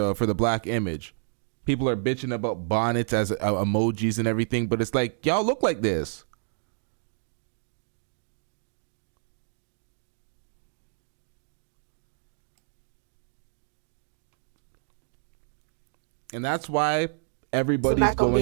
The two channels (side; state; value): left; silent; digital silence